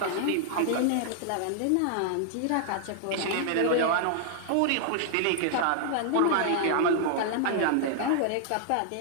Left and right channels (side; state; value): both; different; correlation -0.01